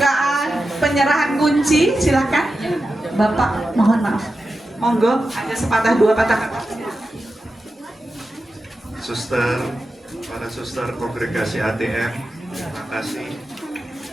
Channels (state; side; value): normal; both; correlation 0.91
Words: penyerahan kunci. Silakan. Bapak, mohon maaf. Monggo, ada sepatah dua patah kata. Suster, para suster kongregasi ATM, terima kasih